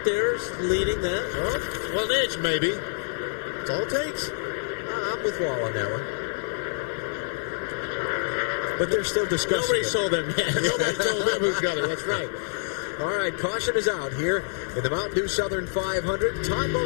there's leading that. Well, an inch maybe. That's all it takes. I'm with Wall on that one. But they're still discussing Nobody it. sold them yet. Nobody told them who's got it. That's right. All right, caution is out here in the Mountain Dew Southern 500. Todd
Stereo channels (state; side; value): silent; right; 56 dB below the other